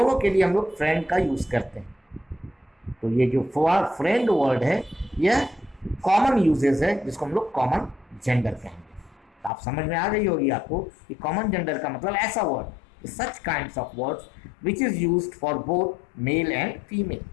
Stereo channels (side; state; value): right; drops out; at 9.5 s